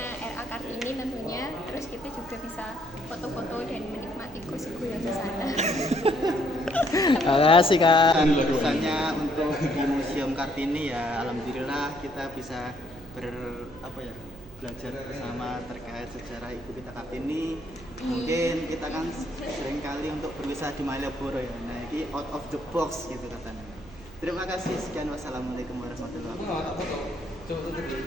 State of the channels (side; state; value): right; noise; hum, 19 dB below the sound